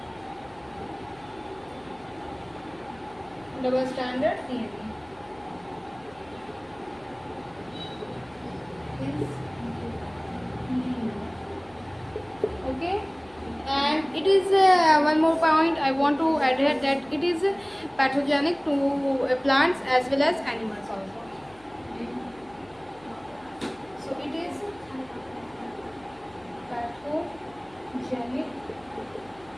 Double stranded DNA is linear. Okay. And it is one more point I want to add here, that it is pathogenic to plants as well as animals also. So it is pathogenic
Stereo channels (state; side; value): noise; left; hum, 27 dB below the sound